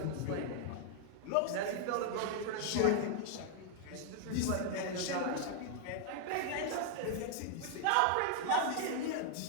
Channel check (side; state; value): both; different; correlation -0.01